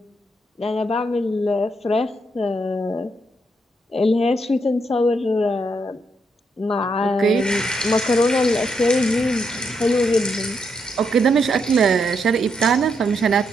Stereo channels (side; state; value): both; normal; correlation 0.78